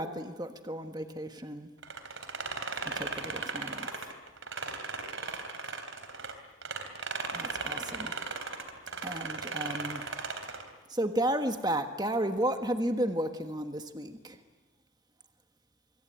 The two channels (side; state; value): both; normal; correlation 0.43